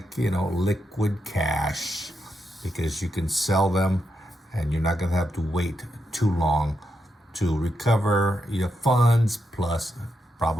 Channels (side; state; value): both; normal; correlation 0.84